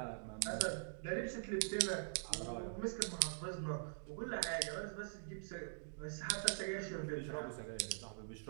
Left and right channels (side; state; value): left; silent; digital silence